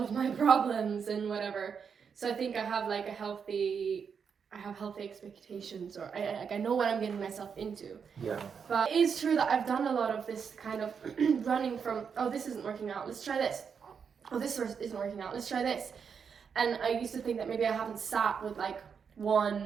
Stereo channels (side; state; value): left; quieter; 6.5 dB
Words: my problems and whatever. So I think I have like healthy expectations, or I know what I'm getting myself into. Yeah. But it is true that I've done a lot of this kind of running from, oh, this isn't working out, let's try this. Oh, this isn't working out, let's try this. And I used to think that maybe I haven't sat with like